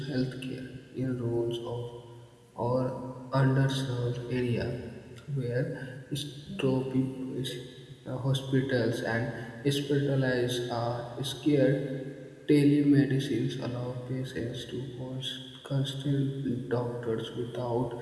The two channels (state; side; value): identical; both; correlation 1.00